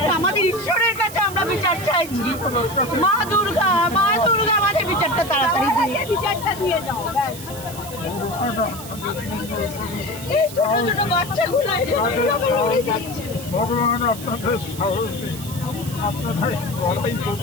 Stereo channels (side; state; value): right; noise; hiss, 13 dB below the sound